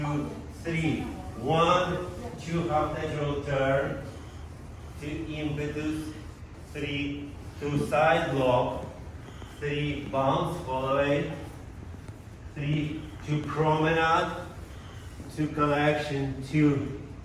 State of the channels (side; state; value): both; identical; correlation 1.00